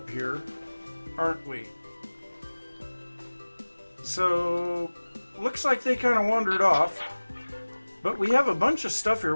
here, aren't we? So, looks like they kind of wandered off. But we have a bunch of stuff here.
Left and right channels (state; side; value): inverted; both; correlation -1.00